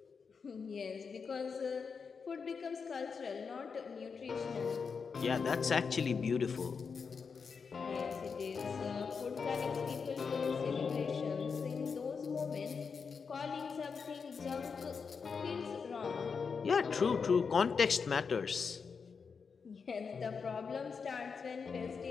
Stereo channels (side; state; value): right; quieter; 5.6 dB